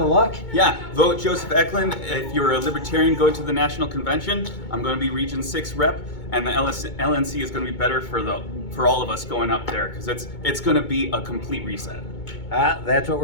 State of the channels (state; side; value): late; right; 2.2 ms